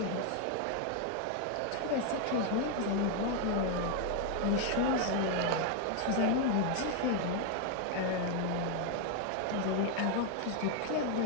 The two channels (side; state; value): both; different; correlation 0.00